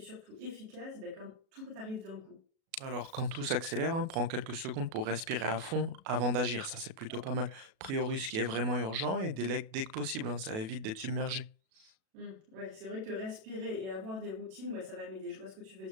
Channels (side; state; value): left; late; 37 ms